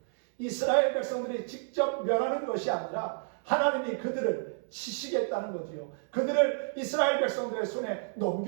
이스라엘 백성들이 직접 멸하는 것이 아니라 하나님이 그들을 치시겠다는 거지요. 그들을 이스라엘 백성들의 손에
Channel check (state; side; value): silent; left; 58 dB below the other